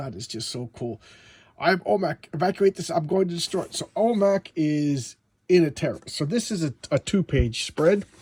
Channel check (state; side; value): identical; both; correlation 1.00